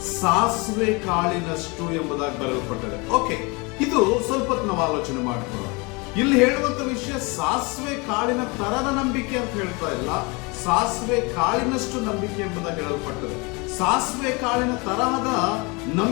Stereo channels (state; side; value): quieter; right; 28.0 dB